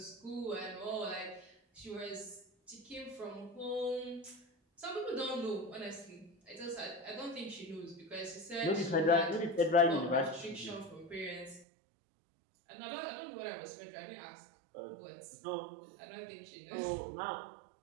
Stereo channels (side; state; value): left; drops out; at 11.7 s